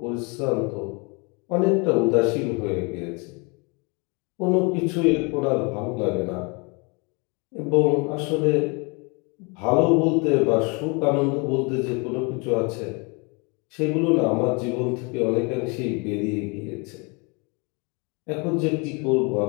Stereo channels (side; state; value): right; quieter; 30.9 dB